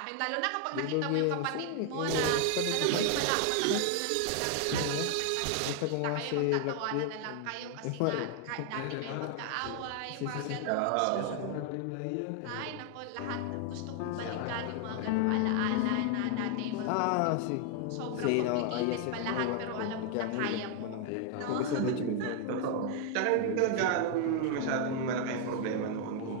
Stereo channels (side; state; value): both; different; correlation 0.00